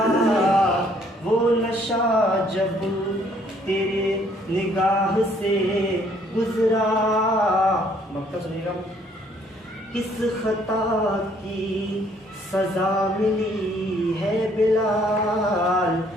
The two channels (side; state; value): both; normal; correlation 0.64